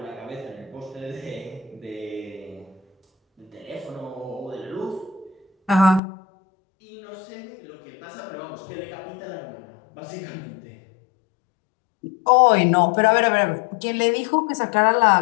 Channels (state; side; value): drops out; right; at 6.0 s